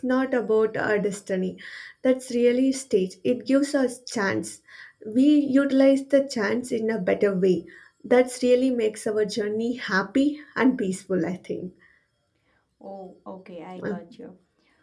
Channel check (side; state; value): both; identical; correlation 1.00